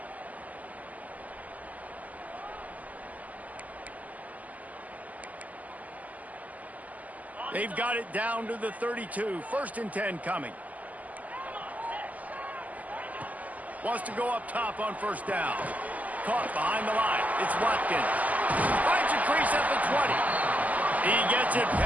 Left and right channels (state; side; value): late; left; 0.077 ms